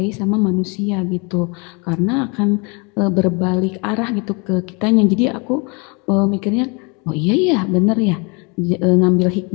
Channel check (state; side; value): quieter; right; 31.2 dB